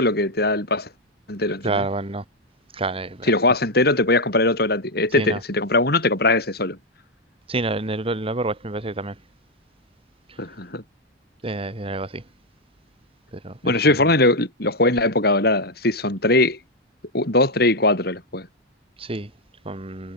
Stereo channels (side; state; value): both; normal; correlation 0.02